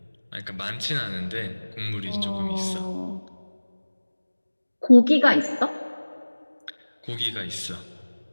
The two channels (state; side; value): inverted; both; correlation -1.00